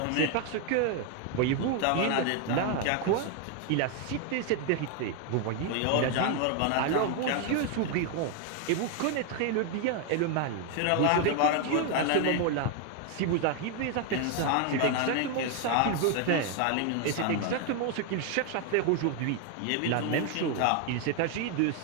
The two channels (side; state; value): both; different; correlation 0.01